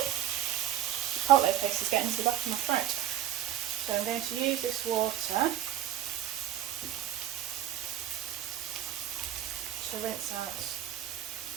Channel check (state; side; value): quieter; left; 11.5 dB